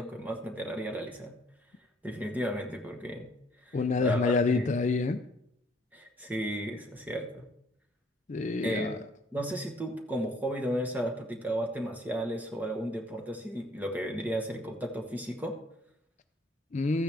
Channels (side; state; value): both; normal; correlation 0.61